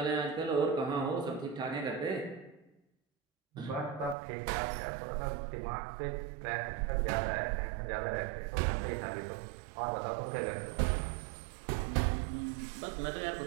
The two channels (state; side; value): drops out; left; at 4.2 s